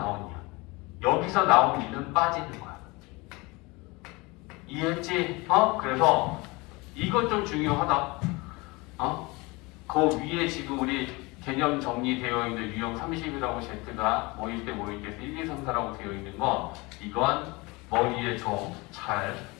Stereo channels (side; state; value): right; quieter; 24.8 dB